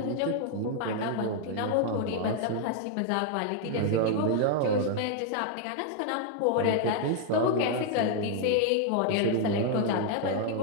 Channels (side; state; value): both; different; correlation 0.00